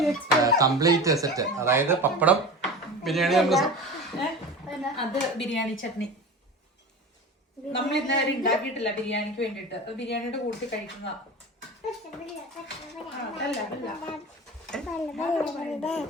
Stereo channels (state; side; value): normal; both; correlation 0.31